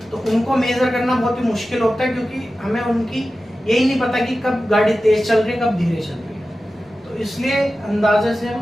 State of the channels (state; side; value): normal; both; correlation 0.94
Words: तो उनको मेजर करना बहुत ही मुश्किल होता है, क्योंकि हमें उनकी यही नहीं पता कि कब गाड़ी तेज चल रही है, कब धीरे चल रही है। तो इसलिए अंदाजे से